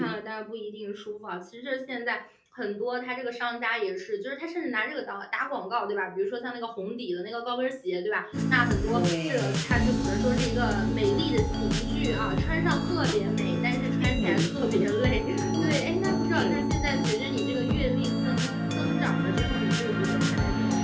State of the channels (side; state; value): both; identical; correlation 1.00